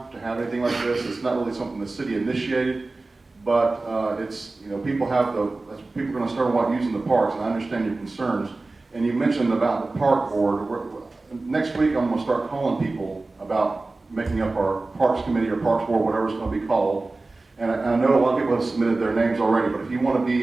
to have anything like this. It's not really something the city initiated, but it's people are going to start using the parks, and I understand your concerns. And you mentioned about the park board. Next week, I'm going to start calling people about making up our parks committee or parks board, whatever it's going to be called. And I know a lot of people have submitted their names already, but if you want to be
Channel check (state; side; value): quieter; left; 3.3 dB